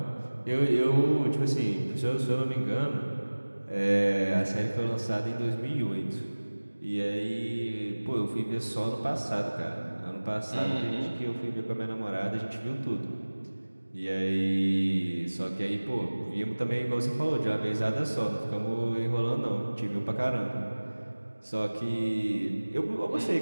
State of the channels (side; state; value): both; inverted; correlation -1.00